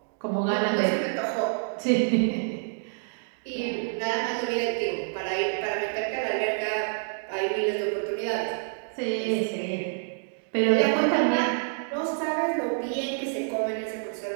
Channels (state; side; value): silent; left; digital silence